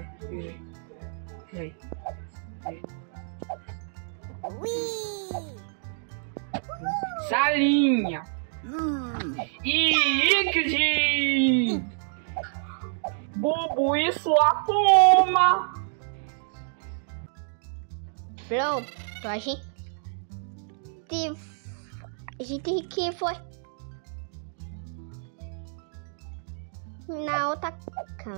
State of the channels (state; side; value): silent; left; digital silence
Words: Salinha. Ike. Bubu e sua turma. Pronto, a gente que foi na outra